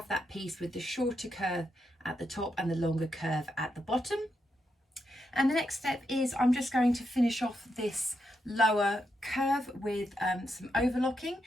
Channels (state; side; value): normal; both; correlation 0.83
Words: that piece with the shorter curve at the top and the longer curve at the bottom. And the next step is I'm just going to finish off this lower curve with some overlocking,